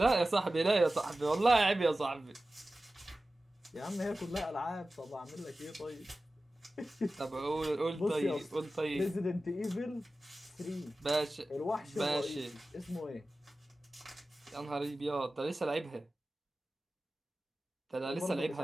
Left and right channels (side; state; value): both; normal; correlation 0.95